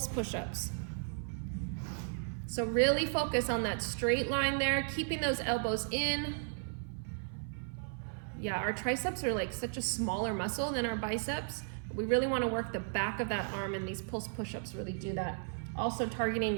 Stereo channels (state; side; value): silent; left; 54 dB below the other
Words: push-ups. So really focus on that straight line there, keeping those elbows in. Yeah, our triceps are like such a smaller muscle than our biceps. We really want to work the back of that arm, and these pulse push-ups really do that. Also targeting